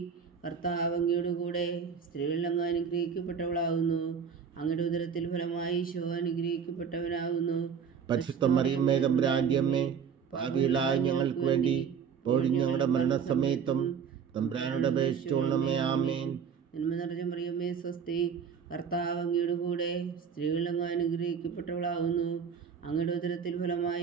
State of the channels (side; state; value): left; quieter; 6.9 dB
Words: കർത്താവ് അങ്ങയുടെ കൂടെ സ്ത്രീകളിൽ അങ്ങ് അനുഗ്രഹിക്കപ്പെട്ടവളാകുന്നു. അങ്ങയുടെ ഉദരത്തിൽ ഫലമായി ഈശോ അനുഗ്രഹിക്കപ്പെട്ടവനാകുന്നു. പരിശുദ്ധ മറിയമ്മേ തമ്പുരാന്റെ അമ്മേ, പാപികളായ ഞങ്ങൾക്ക് വേണ്ടി ഇപ്പോഴും ഞങ്ങളുടെ മരണസമയത്തും തമ്പുരാനോട് അപേക്ഷിച്ചുകൊള്ളണമേ. ആമേൻ. നന്മ നിറഞ്ഞ മറിയമ്മേ സ്വസ്തി, കർത്താവ് അങ്ങയുടെ കൂടെ സ്ത്രീകളിൽ അങ്ങ് അനുഗ്രഹിക്കപ്പെട്ടവളാകുന്നു. അങ്ങയുടെ ഉദരത്തിൽ